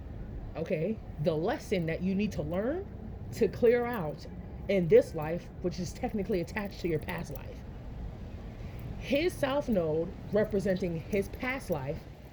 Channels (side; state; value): both; identical; correlation 1.00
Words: Okay? The lesson that you need to learn to clear out in this life, which is technically attached to your past life. His south node representing his past life,